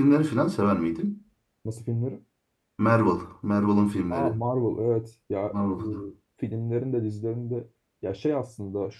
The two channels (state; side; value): identical; both; correlation 1.00